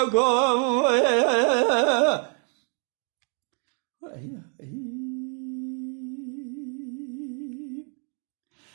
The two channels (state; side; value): quieter; left; 39.7 dB